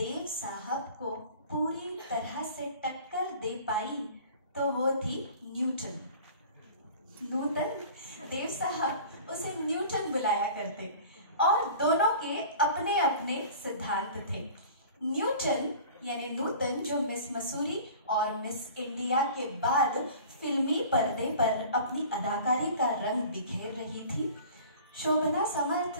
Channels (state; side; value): inverted; both; correlation -0.43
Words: साहब को पूरी तरह से टक्कर दे पाई तो वो थी न्यूटन। देव साहब उसे न्यूटन बुलाया करते और दोनों के अपने अपने सिद्धांत थे। न्यूटन यानी नूतन, जो मिस मसूरी और मिस इंडिया के बाद फिल्मी पर्दे पर अपनी अदाकारी का रंग बिखेर रही थी। शोभना